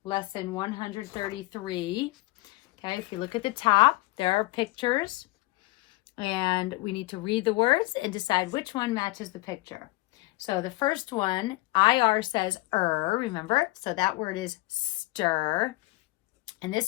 lesson 133. Okay, if you look at the top, there are pictures. And we need to read the words and decide which one matches the picture. So the first one, IR says remember? So that word is stir. And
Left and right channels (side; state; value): right; quieter; 21.5 dB